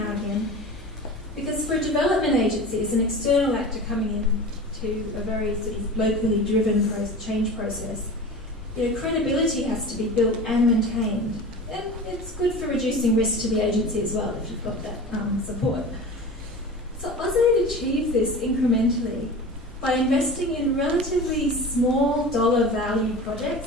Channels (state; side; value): normal; both; correlation 0.34